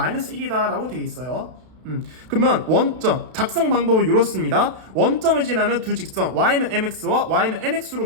1이다 라고 되어 있어요. 그러면 원점, 작성 방법은 이렇습니다. 원점을 지나는 두 직선 y는 mx와 y는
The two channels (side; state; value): left; late; 32 ms